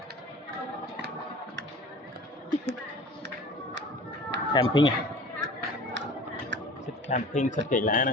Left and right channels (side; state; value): both; normal; correlation 0.41